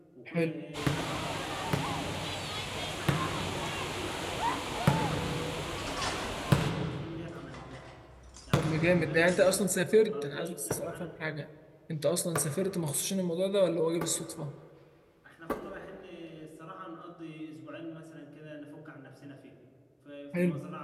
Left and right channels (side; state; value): both; identical; correlation 1.00